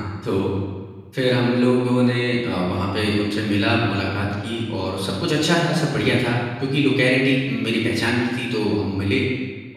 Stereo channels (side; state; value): both; identical; correlation 1.00